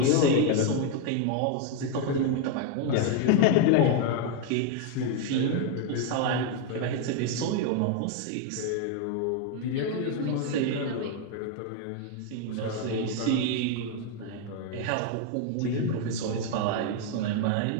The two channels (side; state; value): both; different; correlation 0.01